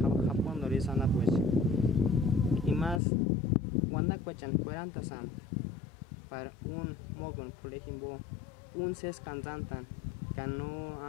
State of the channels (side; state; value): right; drops out; at 3.0 s